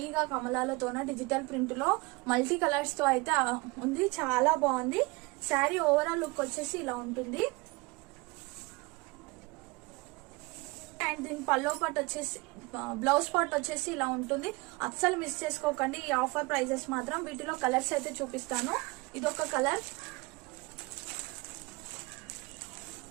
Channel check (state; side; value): quieter; left; 25.1 dB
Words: కమలాలతోన డిజిటల్ ప్రింట్ లో మల్టీ కలర్స్ తో అయితే ఉంది. చాలా బాగుంది శారీ. ఓవరాల్ లుక్ వచ్చేసి ఇలా ఉంటుంది. అండ్ దీని పల్లో పార్ట్ వచ్చేసి బ్లౌజ్ పార్ట్ వచ్చేసి ఇలా ఉంటుంది. అస్సలు మిస్ చేసుకోకండి ఈ ఆఫర్ ప్రైజెస్ మాత్రం. వీటిలో కలర్స్ అయితే చూపిస్తాను. ఇదొక కలర్,